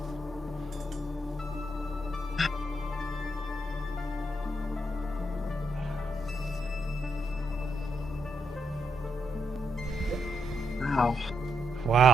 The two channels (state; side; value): normal; both; correlation 0.80